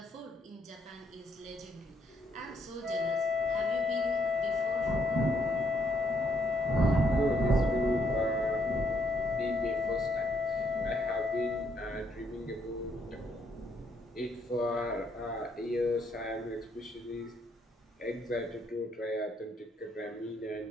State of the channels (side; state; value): both; normal; correlation 0.72